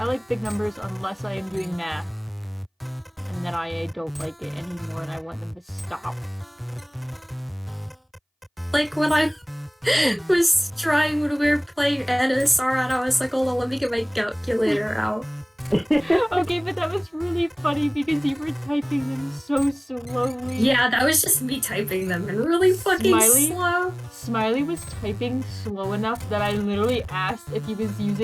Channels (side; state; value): both; identical; correlation 1.00